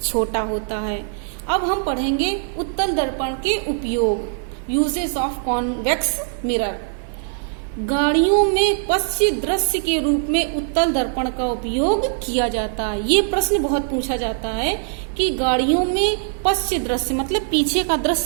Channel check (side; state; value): left; silent; 58 dB below the other